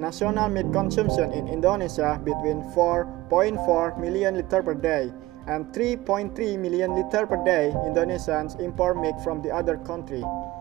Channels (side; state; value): left; quieter; 18.3 dB